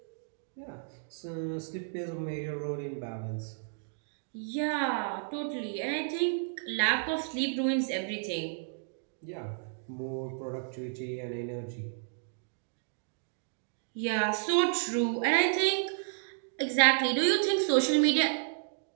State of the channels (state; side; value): silent; left; digital silence